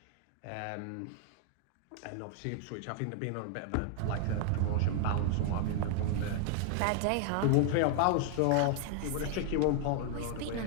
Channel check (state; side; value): different; both; correlation 0.00